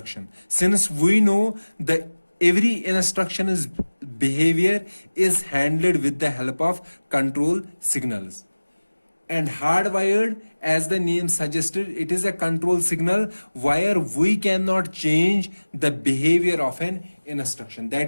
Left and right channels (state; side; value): inverted; both; correlation -1.00